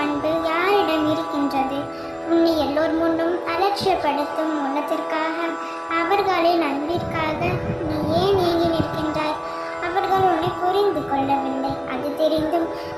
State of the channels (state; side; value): identical; both; correlation 1.00